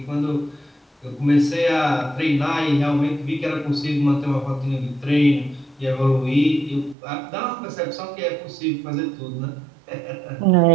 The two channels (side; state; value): left; drops out; at 7.0 s